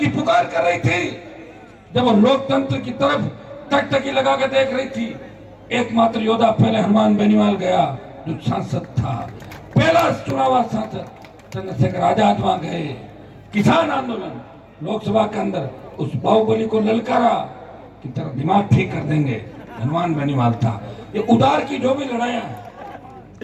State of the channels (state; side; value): identical; both; correlation 1.00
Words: पुकार कर रही थी, जब वो लोकतंत्र की तरफ टकटकी लगा के देख रही थी, एकमात्र योद्धा पहले हनुमान बेनीवाल गया जो सांसद था, पहला चुनाव सांसद चंद्रशेखर आजाद वहां गए। किसान आंदोलन लोकसभा के अंदर उस बाहुबली को ललकारा कि तेरा दिमाग ठीक कर देंगे, हनुमान बेनीवाल था। ये उदार की जो भी लड़ाइयां हैं